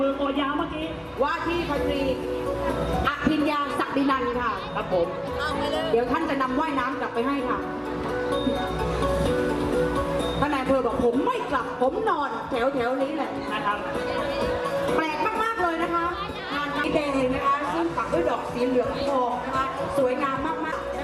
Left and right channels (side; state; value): both; identical; correlation 1.00